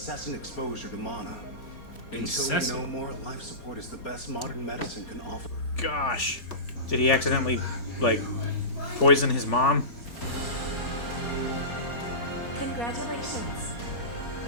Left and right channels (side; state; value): right; late; 4.3 ms